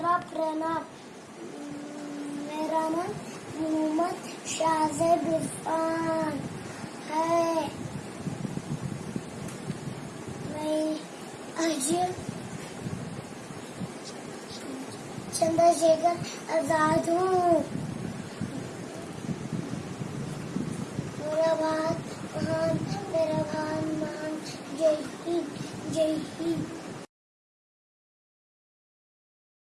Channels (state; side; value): identical; both; correlation 1.00